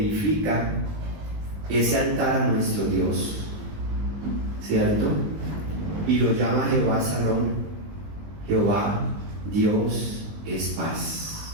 ese altar a nuestro Dios, ¿cierto? Y lo llama Jehová Salón. Jehová, Dios es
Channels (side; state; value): left; late; 19 ms